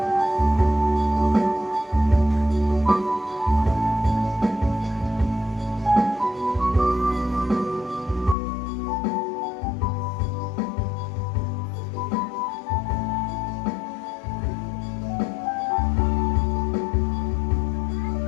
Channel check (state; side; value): drops out; right; at 8.3 s